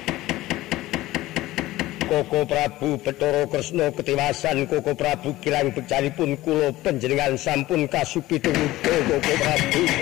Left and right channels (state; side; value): quieter; right; 17.1 dB